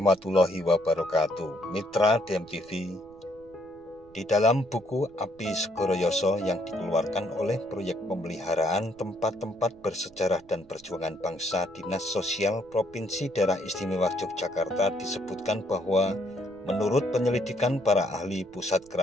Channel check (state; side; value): noise; right; rumble, 27 dB below the sound